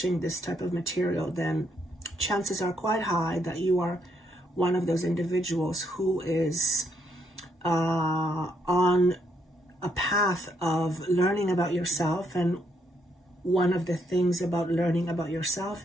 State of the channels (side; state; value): both; normal; correlation 0.74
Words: type of material, then chances are quite high that you are one of those individuals who is on a path of learning about yourself. And one of the things about learning about yourself